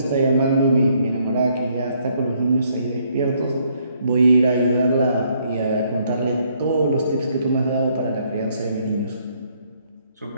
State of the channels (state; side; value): inverted; both; correlation -0.69